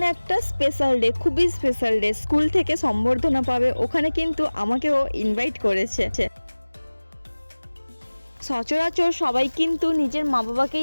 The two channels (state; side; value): inverted; both; correlation -1.00